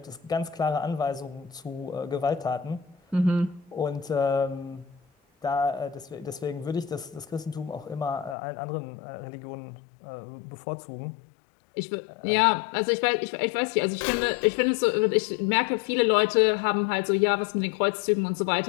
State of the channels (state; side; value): drops out; right; at 8.3 s